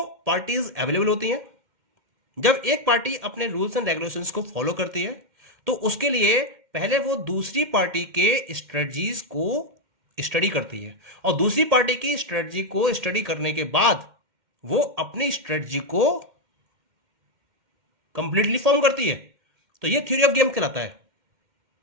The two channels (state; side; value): late; left; 1.7 ms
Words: पार्टीज अवेलेबल होती हैं। जब एक पार्टी अपने रूल्स एंड रेगुलेशंस को फॉलो करती है तो उसके लिए पहले वो दूसरी पार्टी के स्ट्रेटजीज को स्टडी करती है और दूसरी पार्टी की स्ट्रेटजी को स्टडी करने के बाद वो अपनी स्ट्रेटजी को कंप्लीटली फॉर्म करती है। तो ये थ्योरी ऑफ गेम कहलाता है।